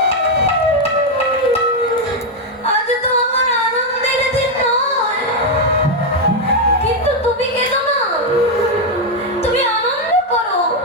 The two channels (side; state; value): both; normal; correlation 0.03